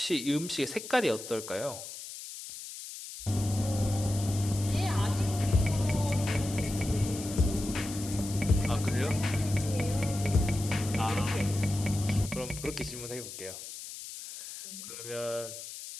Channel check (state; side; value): noise; left; hiss, 11 dB below the sound